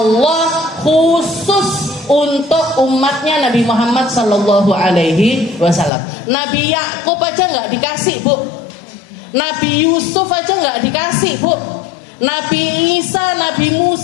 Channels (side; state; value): right; drops out; at 5.9 s